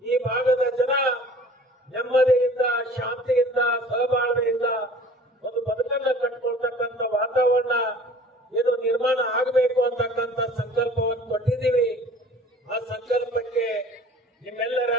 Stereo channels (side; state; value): both; normal; correlation 0.47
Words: ಈ ಭಾಗದ ಜನ ನೆಮ್ಮದಿಯಿಂದ, ಶಾಂತಿಯಿಂದ, ಸಹಬಾಳ್ವೆಯಿಂದ ಒಂದು ಬದುಕನ್ನ ಕಟ್ಕೊಳ್ತಕ್ಕಂಥ ವಾತಾವರಣ ಏನು ನಿರ್ಮಾಣ ಆಗಬೇಕು ಅಂತಕ್ಕಂಥ ಸಂಕಲ್ಪವನ್ನು ಕೊಟ್ಟಿದ್ದೀವಿ. ಆ ಸಂಕಲ್ಪಕ್ಕೆ ನಿಮ್ಮೆಲ್ಲರ